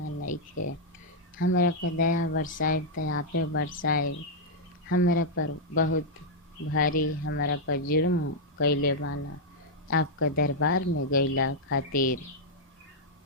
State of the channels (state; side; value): normal; both; correlation -0.05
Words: नइखे। हमरा पर दया बरसाइब त आपे बरसाइब, हमरा पर बहुत भारी हमरा पर जुर्म कैले बाना, आपका दरबार में गईला खातिर।